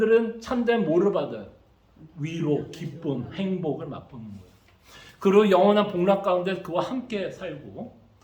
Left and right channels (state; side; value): identical; both; correlation 1.00